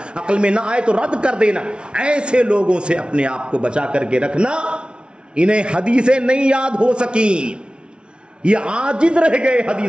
عقل میں نہ آئے تو رد کر دینا، ایسے لوگوں سے اپنے آپ کو بچا کر کے رکھنا۔ انہیں حدیثیں نہیں یاد ہو سکیں، یہ عاجز رہ گئے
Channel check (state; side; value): late; left; 0.057 ms